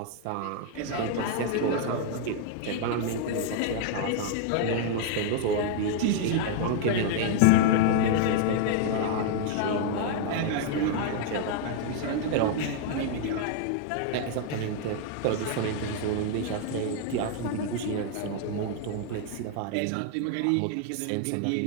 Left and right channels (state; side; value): different; both; correlation 0.00